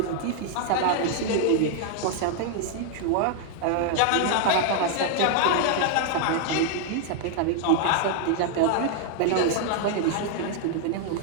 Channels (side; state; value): both; different; correlation 0.00